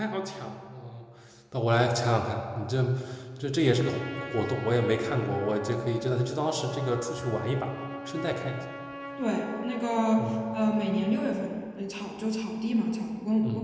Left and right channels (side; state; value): both; identical; correlation 1.00